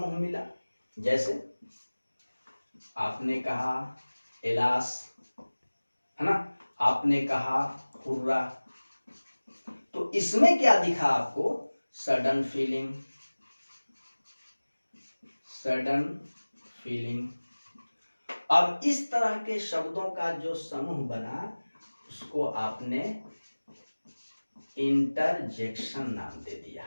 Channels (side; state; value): both; inverted; correlation -1.00